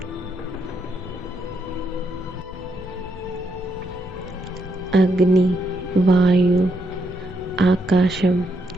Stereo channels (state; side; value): normal; both; correlation 0.78